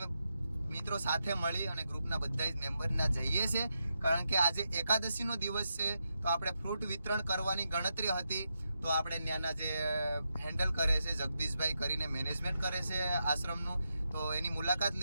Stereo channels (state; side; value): inverted; both; correlation -0.85